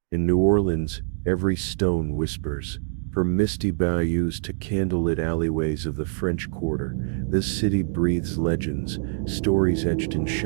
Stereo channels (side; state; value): left; silent; digital silence